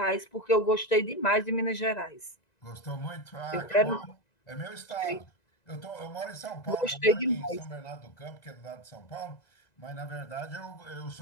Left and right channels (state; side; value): late; right; 2.0 ms